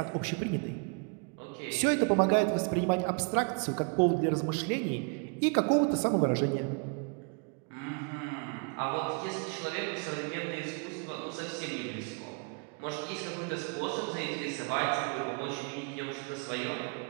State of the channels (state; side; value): quieter; left; 37.1 dB